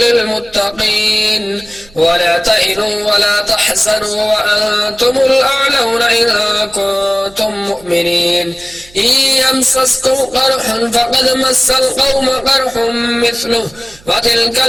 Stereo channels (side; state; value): right; noise; hum, 26 dB below the sound